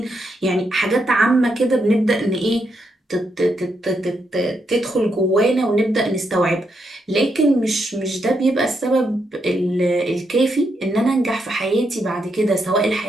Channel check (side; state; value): both; normal; correlation 0.80